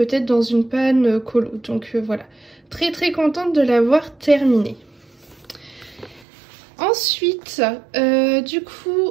dans une panne colo. Donc voilà, très très contente de l'avoir terminé. Ensuite, du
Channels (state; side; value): drops out; left; at 6.2 s